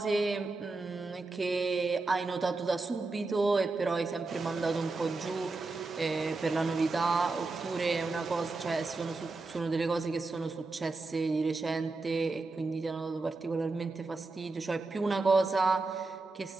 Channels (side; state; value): left; quieter; 3.6 dB